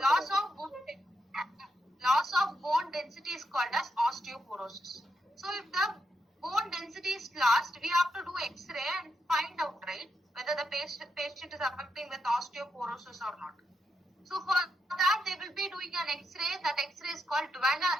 Loss of bone density is called as osteoporosis. So if the bone density is lost, we have to do X-ray and find out, right, whether the patient is affecting with osteoporosis or not. So for that, they will be doing an X-ray. That X-ray is called dual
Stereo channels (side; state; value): both; normal; correlation 0.82